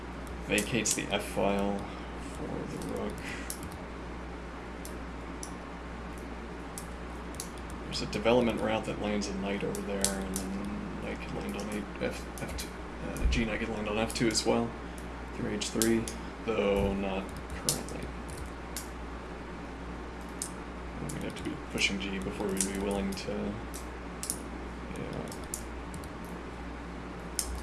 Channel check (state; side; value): identical; both; correlation 1.00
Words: Vacates the f file for the rook. There's a development route that lands a knight over there, and then knight could land on f2. G knight could land on f2 as well, through h3, though not currently. We'd have to be pushing g before we'd be willing to. Yeah.